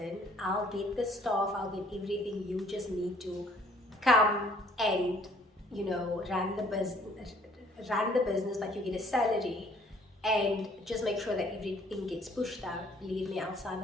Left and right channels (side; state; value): both; normal; correlation 0.60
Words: I'll get the staff, I'll get everything, you just need to come and run the business, but you get a salary, and just make sure that everything gets pushed out, believe me, I'll sign